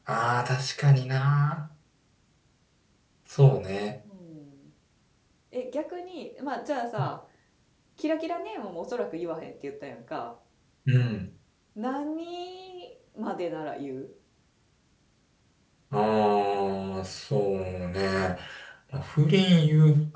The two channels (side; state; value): both; identical; correlation 1.00